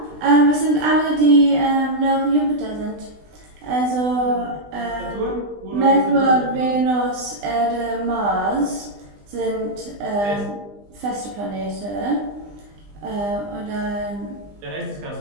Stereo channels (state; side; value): late; left; 20 ms